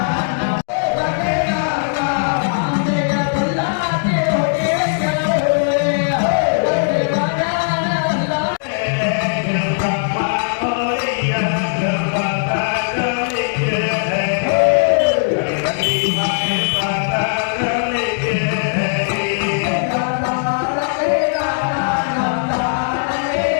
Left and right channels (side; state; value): right; silent; digital silence